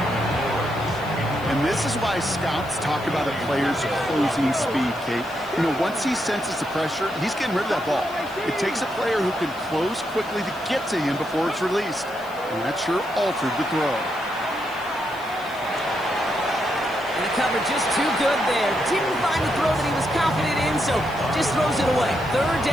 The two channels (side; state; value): left; noise; hiss, 22 dB below the sound